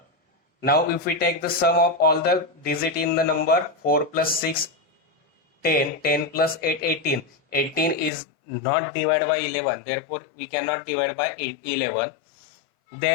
Now if we take the sum of all the digit in the number, 4 plus 6 10, 10 plus 8 18. 18 is not divided by 11, therefore we cannot divide by 11.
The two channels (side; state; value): right; drops out; at 8.1 s